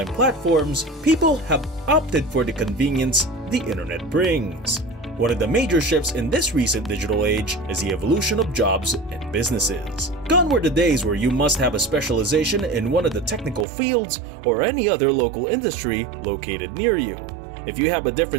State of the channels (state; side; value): drops out; left; at 13.7 s